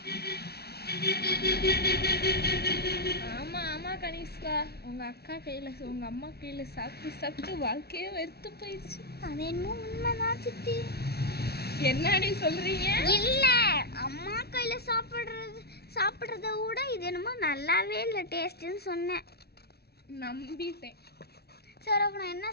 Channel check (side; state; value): right; late; 0.46 ms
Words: ஆமா ஆமா கனிஷ்கா, உங்க அக்கா கையில உங்க அம்மா கையில சாப்பிட்டு சாப்பிட்டு வாழ்க்கையே வெறுத்து போயிடுச்சு. அது என்னமோ உண்மைதான் சித்தி. என்னடி சொல்றீங்க? இல்ல, அம்மா கையில சாப்பிடுறத விட இது என்னமோ நல்லாவே இல்லை டேஸ்ட்னு சொன்னேன். நம்பிட்டேன். சரி, அப்ப நான் என்ன